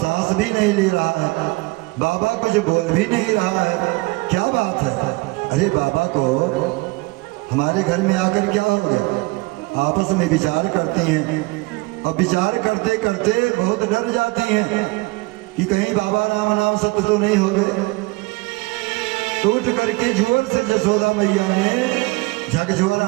भी नहीं ले रहा है, बाबा कुछ बोल भी नहीं रहा है, क्या बात है? अरे बाबा को हमारे घर में आकर क्या हो गया? आपस में विचार करती हैं और विचार करते करते बहुत डर जाती हैं कि कहीं बाबा नाम सत्य तो नहीं हो गए। टूट करके जोर से जसोदा मैया ने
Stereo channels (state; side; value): quieter; left; 23.9 dB